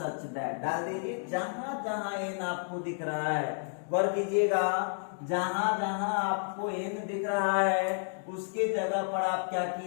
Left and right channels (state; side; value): silent; right; digital silence